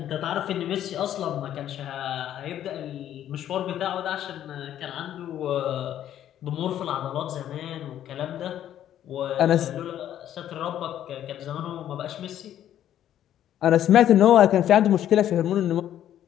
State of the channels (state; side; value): quieter; right; 11.2 dB